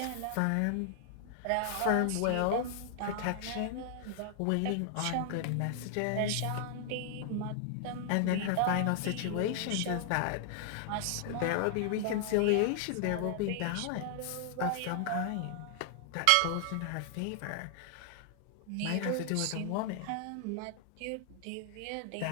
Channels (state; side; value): different; both; correlation 0.00